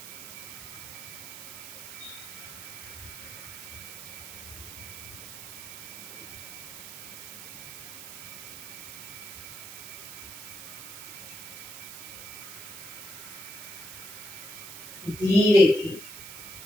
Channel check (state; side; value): noise; right; hiss, 10 dB below the sound